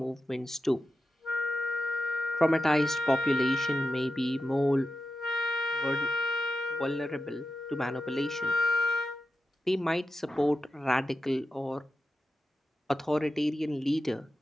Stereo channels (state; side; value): normal; both; correlation 0.91